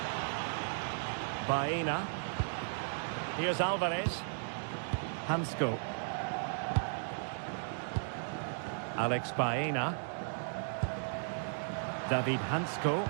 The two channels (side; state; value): left; silent; digital silence